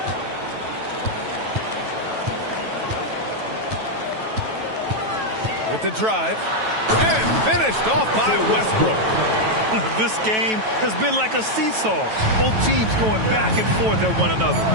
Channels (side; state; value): left; late; 9.2 ms